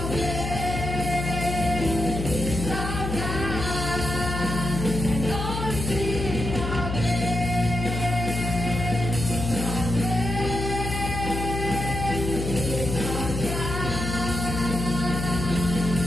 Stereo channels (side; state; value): left; noise; hum, 4 dB below the sound